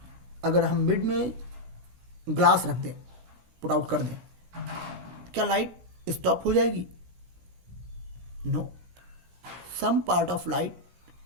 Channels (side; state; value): left; late; 16 ms